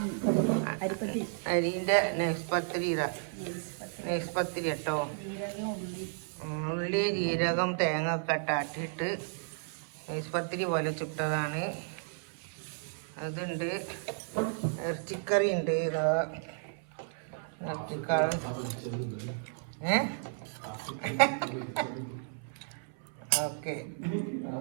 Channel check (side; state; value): left; silent; 56 dB below the other